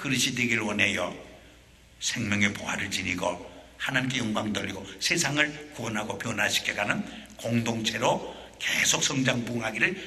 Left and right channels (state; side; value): identical; both; correlation 1.00